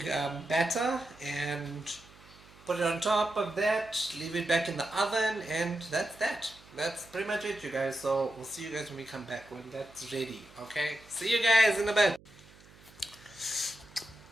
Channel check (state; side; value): noise; right; hum, 24 dB below the sound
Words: batter, and put it on top of that, leave it back in the oven, and that's that. That's pretty much it, you guys. So we'll see you guys when we come back, when that's ready. Okay, see you guys in a bit.